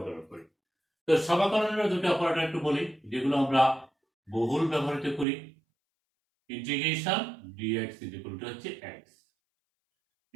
করি। তো সমাকলনের দুটো অপারেটর একটু বলি, যেগুলো আমরা বহুল ব্যবহৃত করি। ইন্টিগ্রেশন dx হচ্ছে x,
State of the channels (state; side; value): drops out; left; at 5.2 s